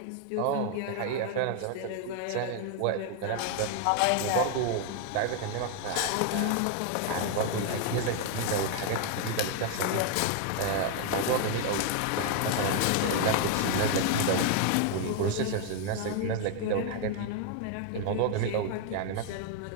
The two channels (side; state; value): both; different; correlation 0.00